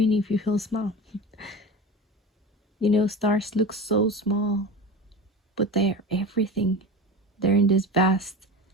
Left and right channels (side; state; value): both; normal; correlation 0.30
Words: if you feel small. Stars look so small, but they're everything. They're in this vast